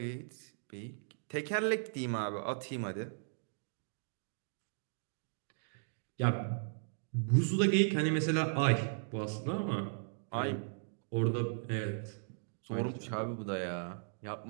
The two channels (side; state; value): left; silent; digital silence